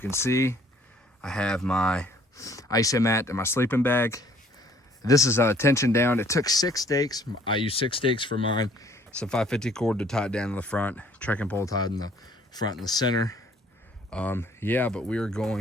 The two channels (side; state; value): both; normal; correlation 0.59